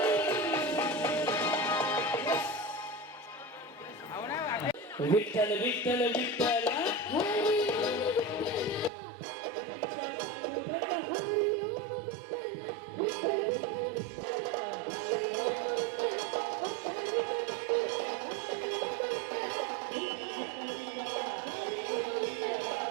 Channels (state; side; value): drops out; left; at 8.9 s